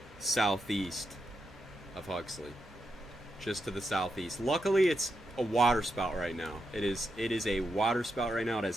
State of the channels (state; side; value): noise; right; hum, 25 dB below the sound